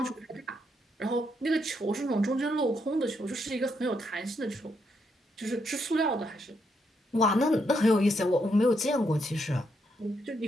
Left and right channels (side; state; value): both; normal; correlation 0.78